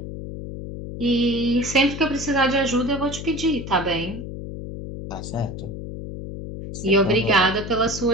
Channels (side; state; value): left; noise; hum, 9 dB below the sound